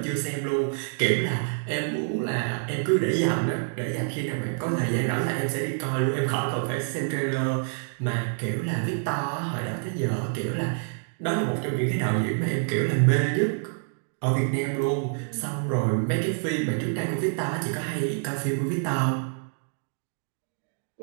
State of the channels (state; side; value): silent; left; 60 dB below the other